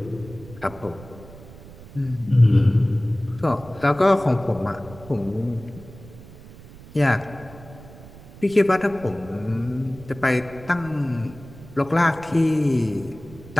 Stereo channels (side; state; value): right; noise; rumble, 18 dB below the sound